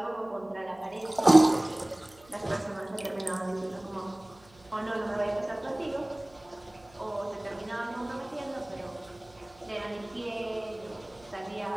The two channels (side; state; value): right; noise; hum, 27 dB below the sound